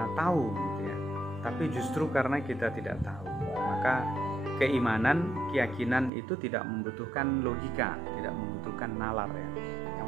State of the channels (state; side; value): drops out; left; at 6.1 s